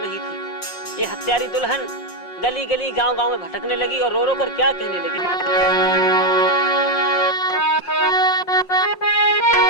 नहीं थी। ये हत्यारी दुल्हन गली गली गांव गांव में भटकने लगी और रो रो कर क्या कहने लगी।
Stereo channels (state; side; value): late; right; 5.6 ms